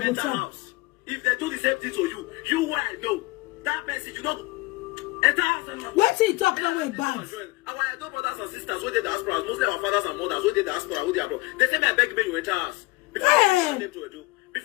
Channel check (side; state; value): right; quieter; 22.4 dB